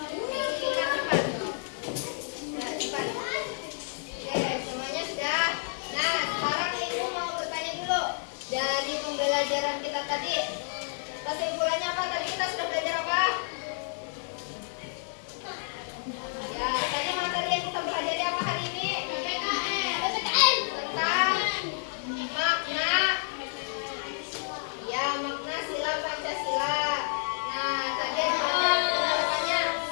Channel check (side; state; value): right; silent; digital silence